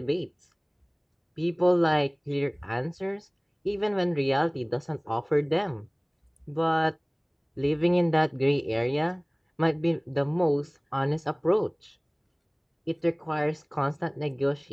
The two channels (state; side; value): identical; both; correlation 1.00